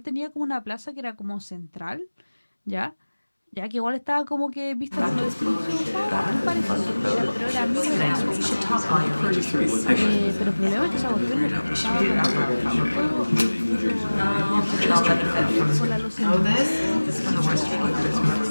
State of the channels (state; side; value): inverted; both; correlation -1.00